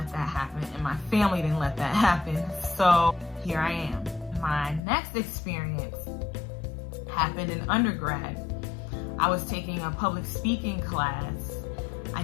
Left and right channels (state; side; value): drops out; right; at 4.8 s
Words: that happen, and my family didn't let that happen. So here I am. My next experience happened in undergrad. I was taking a public speaking class. I